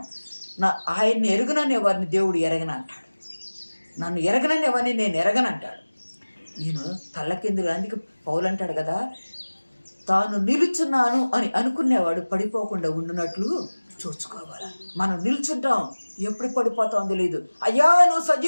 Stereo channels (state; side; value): inverted; both; correlation -1.00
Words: ఆయన్ని ఎరగనని వారిని దేవుడు ఎరగనంటాడు, నన్ను ఎరగనని వారిని నేను ఎరగనంటాడు. నేను తల్లకిందులు, అందుకే పౌలు అంటాడు కదా, తాను నిలుచున్నాను అని అనుకునేవాడు పడిపోకుండా ఉండునట్లు చూసుకోవాలి. మనం నిల్చుంటాం, ఎప్పుడు పడిపోతాం తెలియదు. అయ్యా నువ్వు